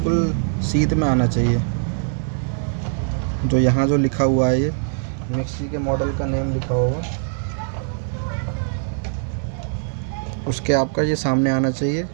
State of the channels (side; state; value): left; silent; 61 dB below the other